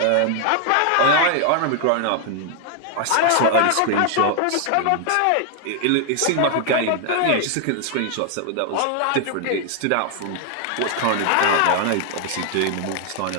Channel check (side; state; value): both; different; correlation 0.00